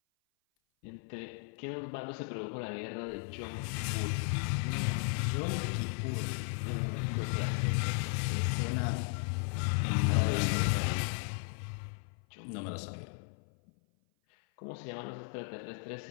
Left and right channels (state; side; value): silent; right; 54 dB below the other